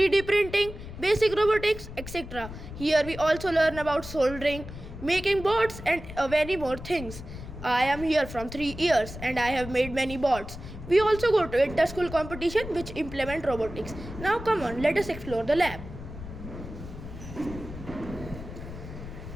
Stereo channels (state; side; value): noise; left; rumble, 11 dB below the sound